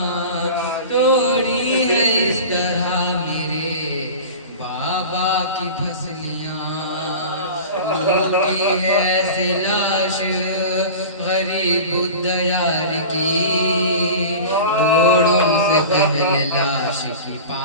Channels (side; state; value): both; inverted; correlation -0.34